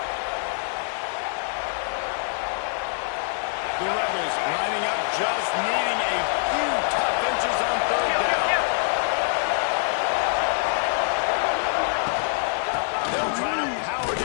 The Rebels lining up, just needing a few tough inches on 3rd down. They'll try to power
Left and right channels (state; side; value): silent; right; 62 dB below the other